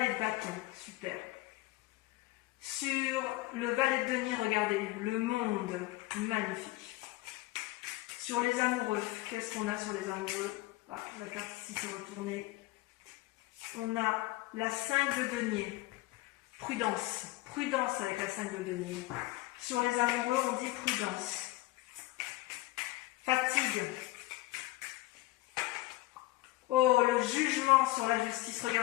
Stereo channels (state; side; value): quieter; right; 19.1 dB